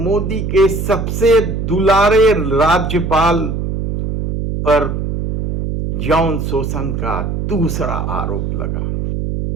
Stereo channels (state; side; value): noise; right; hum, 2 dB below the sound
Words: के सबसे दुलारे राज्यपाल पर यौन शोषण का दूसरा आरोप लगा।